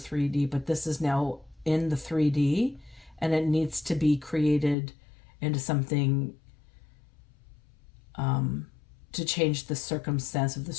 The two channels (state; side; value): drops out; right; at 4.8 s